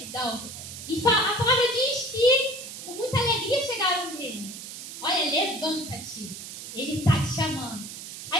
E a palavra diz que com muita alegria chegaram nele. Olha, levanta-te. Ele está te chamando.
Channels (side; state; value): right; noise; hiss, 10 dB below the sound